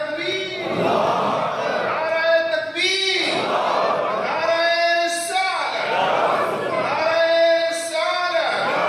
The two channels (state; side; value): identical; both; correlation 1.00